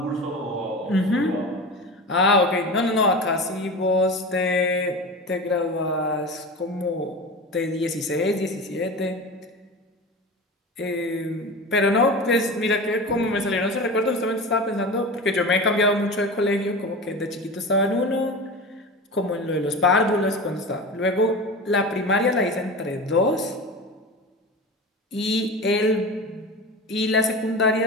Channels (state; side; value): normal; both; correlation 0.30